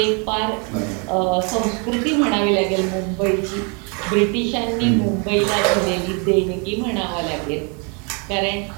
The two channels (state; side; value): quieter; left; 35.2 dB